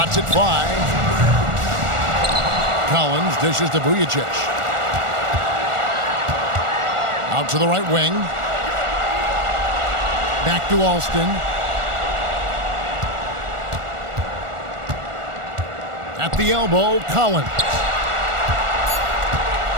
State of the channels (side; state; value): left; late; 1.4 ms